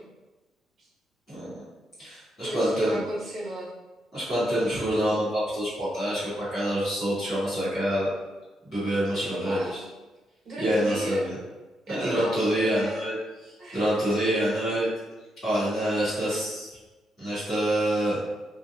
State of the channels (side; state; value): both; normal; correlation 0.81